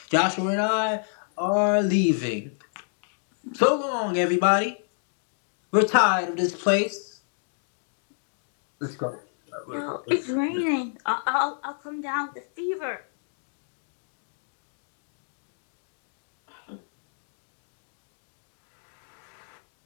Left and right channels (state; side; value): silent; right; digital silence